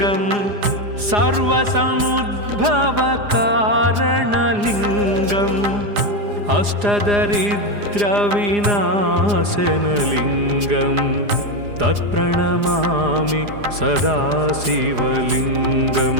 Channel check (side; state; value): left; late; 4.9 ms